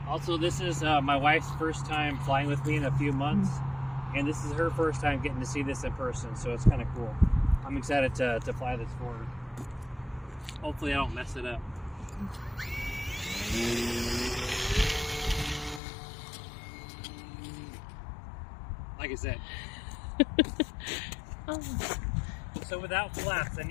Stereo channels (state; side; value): drops out; right; at 15.8 s